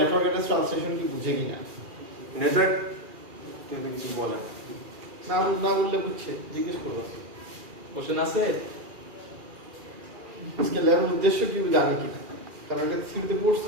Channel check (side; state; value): left; late; 2.4 ms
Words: অ্যাড্রেস ট্রান্সলেশন কি বুঝে কিনা। নেটওয়ার্ক কিছু বলে না না বললে বুঝছে, জিজ্ঞেস করবো। কোশ্চেন আছে? আজকে ল্যাবের উদ্দেশ্য কি জানি কিনা, কারণ এটা সিভিতে পড়ছি